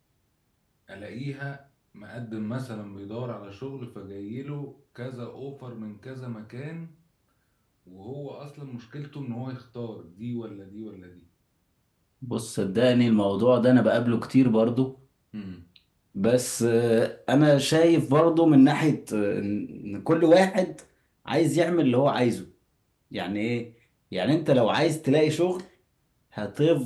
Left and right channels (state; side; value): identical; both; correlation 1.00